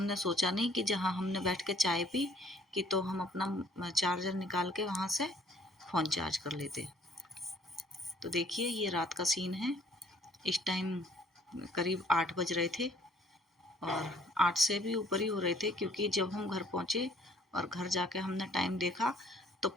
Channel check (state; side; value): normal; both; correlation 0.59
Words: सोचा नहीं कि जहाँ हमने बैठ के चाय पी कि तो हम अपना चार्जर निकाल के वहाँ से फ़ोन चार्ज कर लेते। तो देखिए ये रात का सीन है। इस टाइम करीब 8 बज रहे थे और 8 से भी ऊपर ही हो रहे थे क्योंकि जब हम घर पहुँचे और घर जाके हमने टाइम देखा तो